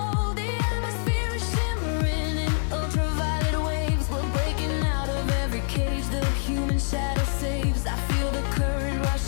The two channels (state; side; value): silent; right; digital silence